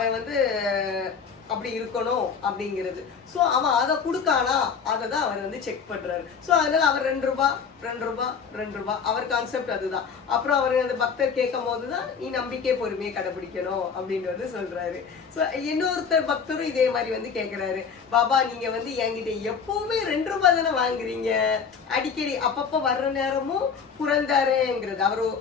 வந்து அப்படி இருக்கணும் அப்படிங்கிறது. ஸோ அவன் அதை கொடுக்கானா அதை தான் அவர் வந்து செக் பண்றாரு. ஸோ அதனால அவர் 2 ரூபாய் அவர் கான்செப்ட் அதுதான். அப்புறம் அவர் அந்த பக்தர் கேட்கும் போதுதான் நீ நம்பிக்கை பொறுமையை கடைபிடிக்கணும் அப்படின்னு வந்து சொல்றாரு. ஸோ இன்னொருத்தர் பக்தரும் இதே மாதிரி வந்து கேட்கிறாரு, பாபா நீங்க வந்து என்கிட்ட எப்பவுமே 2 ரூபாய் தானே வாங்குறீங்க, அடிக்கடி அப்பப்போ வர்ற நேரமும் புரந்தரேங்கிறது.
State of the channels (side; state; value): right; quieter; 6.2 dB